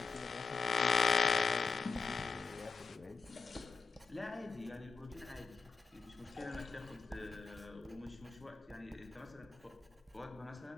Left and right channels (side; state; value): right; quieter; 4.8 dB